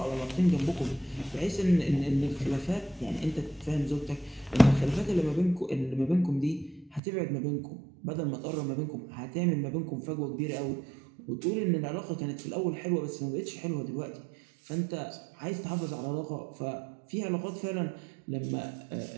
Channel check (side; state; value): left; drops out; at 7.0 s